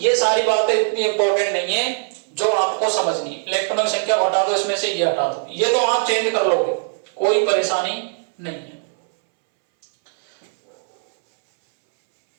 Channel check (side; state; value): left; silent; 66 dB below the other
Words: सारी बातें इतनी इंपॉर्टेंट नहीं है जो आपको समझनी है। इलेक्ट्रॉनों की संख्या हटा दो, इसमें से ये हटा दो, ये तो आप चेंज कर लोगे, कोई परेशानी नहीं है।